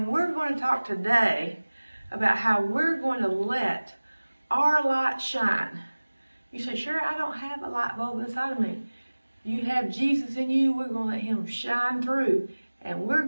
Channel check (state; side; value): inverted; both; correlation -1.00